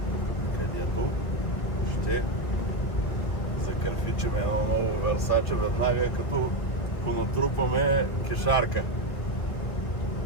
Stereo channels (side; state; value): right; late; 2.2 ms